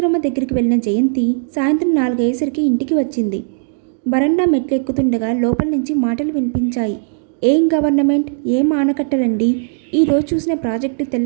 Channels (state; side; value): silent; left; digital silence